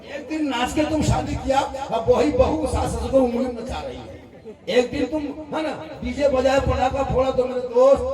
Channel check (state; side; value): identical; both; correlation 1.00